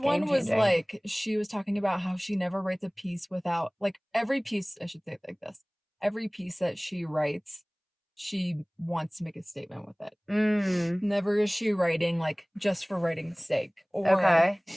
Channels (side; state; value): both; identical; correlation 1.00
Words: one was like, she was talking about how she never writes a piece without, like, every piece, I should say it like this, every piece that she writes, she wants to make a statement with it. Never is she writing like just for writing's sake or